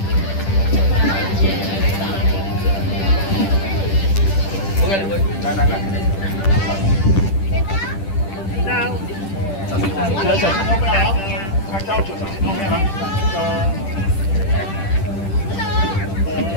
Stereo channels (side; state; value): right; late; 10 ms